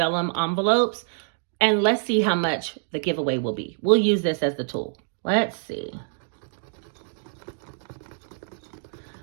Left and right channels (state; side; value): silent; left; digital silence